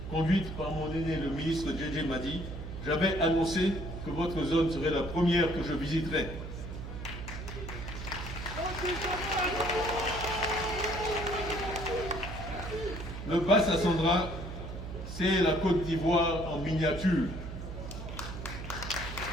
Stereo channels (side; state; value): right; noise; hum, 8 dB below the sound